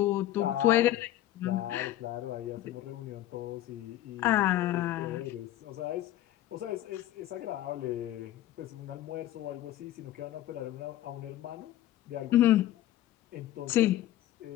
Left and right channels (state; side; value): quieter; right; 13.8 dB